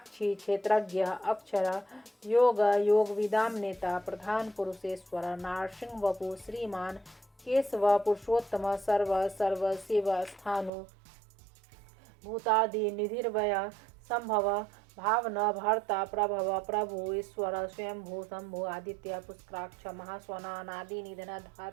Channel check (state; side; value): drops out; left; at 10.7 s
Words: क्षेत्रज्ञ अक्षर योग योग विदाम नेता प्रधान पुरुषेश्वर नारसिंह वपु श्रीमान केशव पुरुषोत्तम सर्व सर्व शिव स्थानु भूतादि निधिर्वय संभव भावना भर्ता प्रभव प्रभु ईश्वर स्वयंभू शंभु आदित्य पुष्कराक्ष महास्वनादि निधन